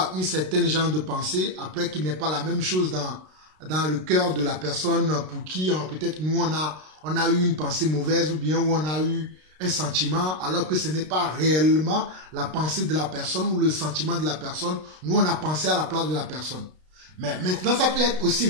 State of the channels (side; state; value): left; late; 32 ms